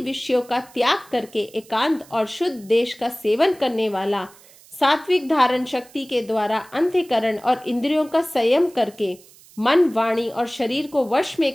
विषयों का त्याग करके एकांत और शुद्ध देश का सेवन करने वाला, सात्विक धारण शक्ति के द्वारा अंतःकरण और इंद्रियों का संयम करके मन, वाणी और शरीर को वश में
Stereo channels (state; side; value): noise; right; hiss, 25 dB below the sound